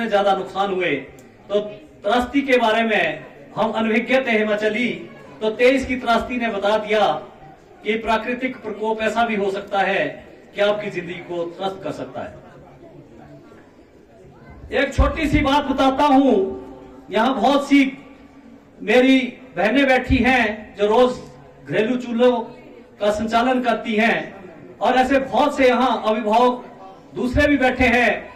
ज्यादा नुकसान हुए। तो त्रासदी के बारे में हम अनभिज्ञ थे हिमाचली, तो 23 की त्रासदी ने बता दिया कि प्राकृतिक प्रकोप ऐसा भी हो सकता है कि आपकी जिंदगी को त्रस्त कर सकता है। एक छोटी सी बात बताता हूं, यहां बहुत सी मेरी बहनें बैठी हैं जो रोज घरेलू चूल्हों का संचालन करती हैं, और ऐसे बहुत से यहां अभिभावक दूसरे भी बैठे हैं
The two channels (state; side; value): identical; both; correlation 1.00